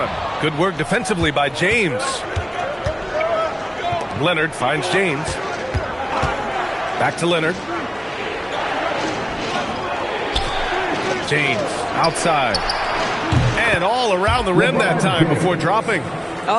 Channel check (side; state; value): both; identical; correlation 1.00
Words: him. Good work defensively by James. Leonard finds James. Back to Leonard. James outside. And all around the rim that time before dropping.